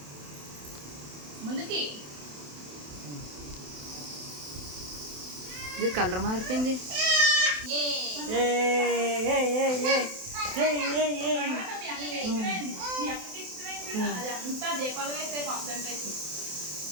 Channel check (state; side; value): late; left; 27 ms